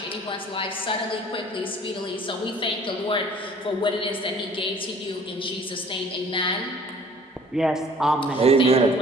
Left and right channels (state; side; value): normal; both; correlation 0.52